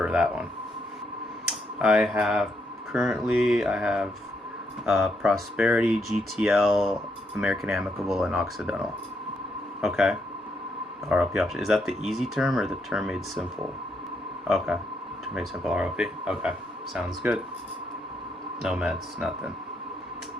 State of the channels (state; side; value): normal; both; correlation 0.77